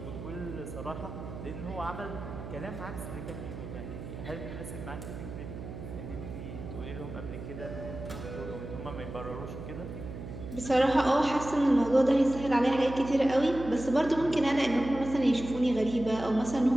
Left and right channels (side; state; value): right; noise; hum, 9 dB below the sound